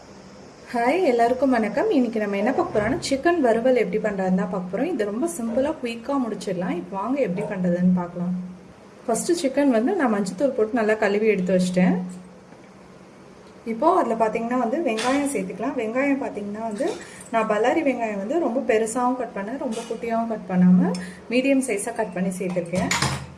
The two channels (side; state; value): both; identical; correlation 1.00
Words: Hi எல்லாருக்கும் வணக்கம். இன்னைக்கு நம்ம என்ன பார்க்க போறோம்னா சிக்கன் வறுவல் எப்படி பண்றதுன்னு தான் பார்க்க போறோம். இது ரொம்ப சிம்பிளா குயிக்கா முடிச்சிடலாம். இப்போ வாங்க எப்படி பண்றதுன்னு பார்க்கலாம். ஃபர்ஸ்ட் சிக்கன் நான் மஞ்சத்தூள் போட்டு நல்லா கழுவி எடுத்து வச்சிட்டேன். இப்போ அதில் பார்த்தீங்கன்னா வெங்காயம் சேர்த்துக்கலாம். வெங்காயம் பார்த்தீங்கன்னா நான் பல்லாரி வெங்காயம் ரொம்ப பெருசாகவும் கட் பண்ணேன், ரொம்ப குட்டியாகவும் கட் பண்ணாமல் மீடியம் சைஸாக கட் பண்ணி சேர்த்துருக்கேன்.